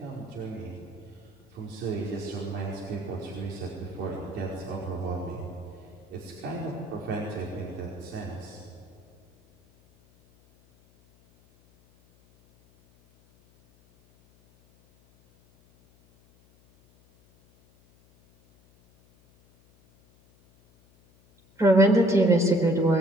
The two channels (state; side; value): noise; left; hum, 30 dB below the sound